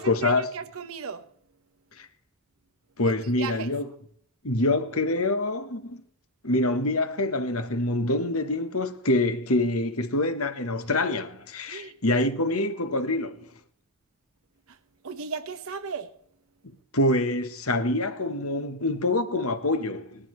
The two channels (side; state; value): both; normal; correlation 0.01